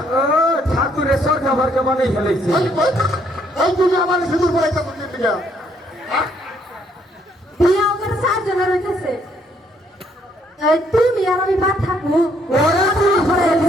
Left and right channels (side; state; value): both; normal; correlation 0.68